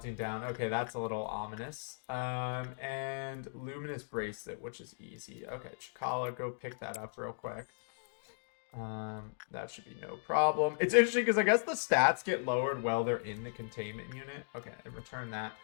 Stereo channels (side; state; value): right; silent; digital silence